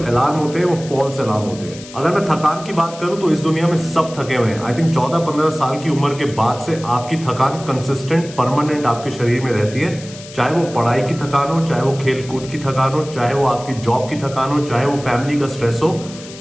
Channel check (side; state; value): left; noise; hiss, 17 dB below the sound